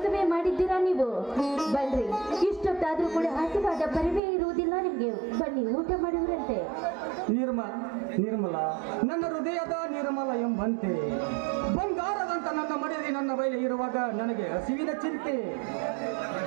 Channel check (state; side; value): drops out; left; at 4.2 s